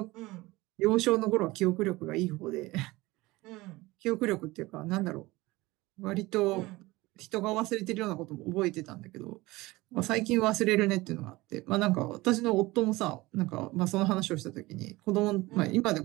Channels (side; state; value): left; quieter; 20.5 dB